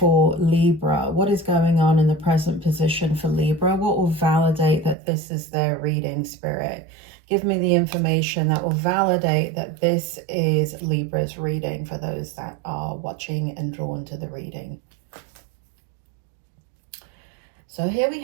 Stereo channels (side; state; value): left; drops out; at 5.0 s